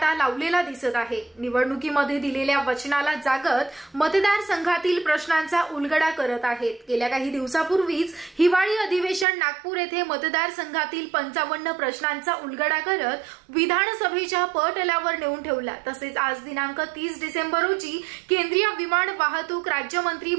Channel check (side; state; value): left; drops out; at 9.2 s